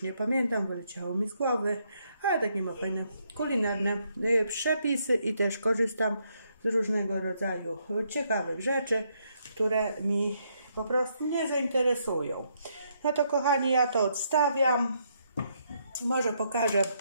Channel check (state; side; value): inverted; both; correlation -0.75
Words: nie pamiętam, wyleciało mi z głowy. Ale takie ma fajne kulinarne przepisy i też korzystam z różnego rodzaju ciekawych rzeczy, które mi po prostu nie zainteresują. No to, kochani, ja to odstawiam. Może pokażę